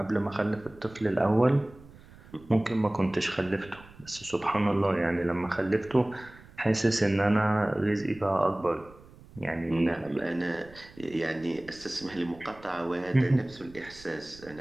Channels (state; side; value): noise; right; rumble, 22 dB below the sound